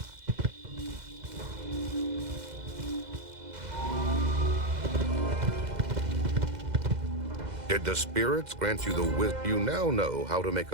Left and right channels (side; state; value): left; late; 2.0 ms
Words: Did the spirits grant you the wisdom? You now know how to make